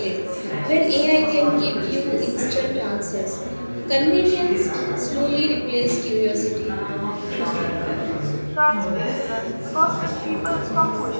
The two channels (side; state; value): both; inverted; correlation -1.00